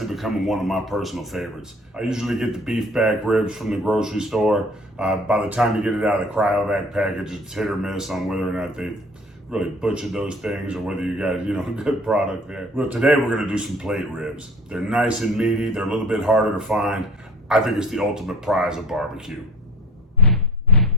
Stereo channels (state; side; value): normal; both; correlation 0.46